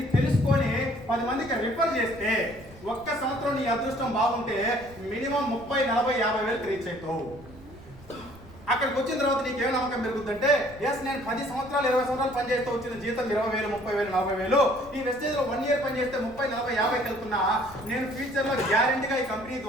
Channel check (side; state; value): right; noise; rumble, 21 dB below the sound